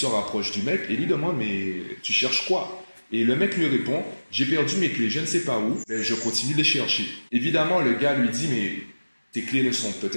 rapproche du mec et lui demande « Mais tu cherches quoi ?» Et le mec lui répond « J'ai perdu mes clés, je ne sais pas où, mais je continue de les chercher. » Évidemment, le gars lui dit « Mais tes clés ne sont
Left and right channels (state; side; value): inverted; both; correlation -1.00